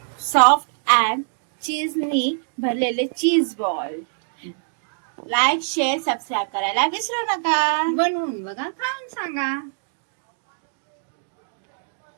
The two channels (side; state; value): left; silent; digital silence